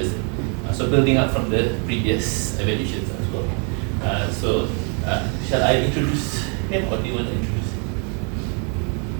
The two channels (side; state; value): left; quieter; 38.5 dB